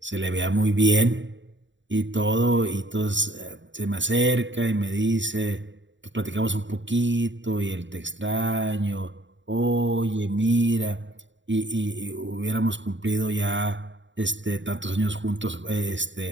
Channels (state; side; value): late; left; 0.54 ms